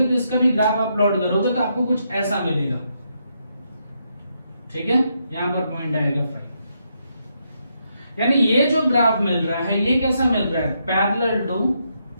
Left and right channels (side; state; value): both; inverted; correlation -0.79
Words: तो इसका भी ग्राफ आप प्लॉट करोगे तो आपको कुछ ऐसा मिलेगा, ठीक है। यहां पर पॉइंट आएगा 5, यानी ये जो ग्राफ मिल रहा है ये कैसा मिल रहा है पैरेलल टू